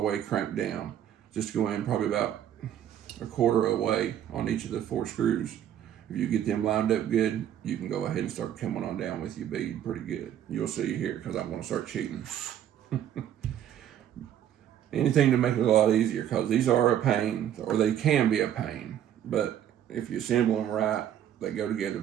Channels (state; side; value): quieter; left; 10.5 dB